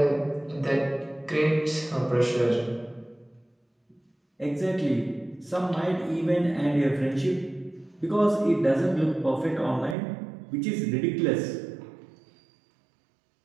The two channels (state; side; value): drops out; left; at 10.0 s